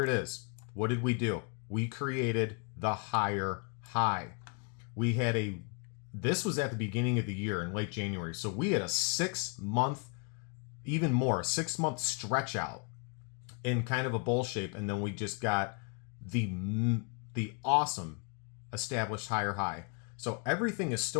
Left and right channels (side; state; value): right; quieter; 34.9 dB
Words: it is. What did we do? We created the higher high. This was at the beginning of the year in late January. So we had a 6-month, even more, 6-month stretch out in kind of a bull shape. And then we just got the awesome established higher high. So everything is